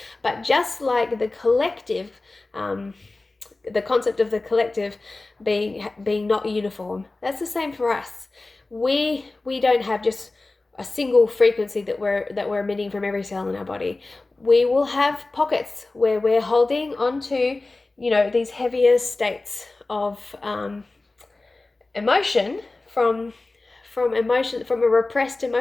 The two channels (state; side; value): quieter; right; 3.2 dB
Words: but just like the collective, the concept of the collective being not uniform, that's the same for us. We don't have just a single frequency that we're emitting from every cell in our body. We will have pockets where we're holding onto these heavier states of emotion from repressed